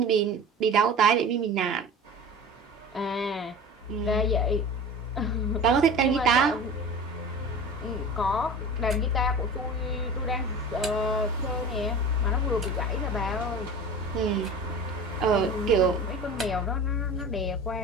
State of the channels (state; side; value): normal; both; correlation 0.36